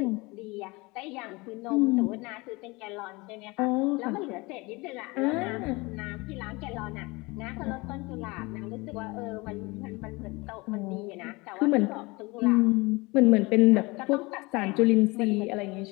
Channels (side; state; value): right; quieter; 24.5 dB